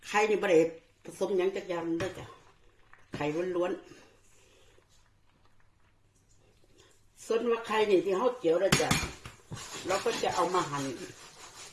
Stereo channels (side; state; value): both; identical; correlation 1.00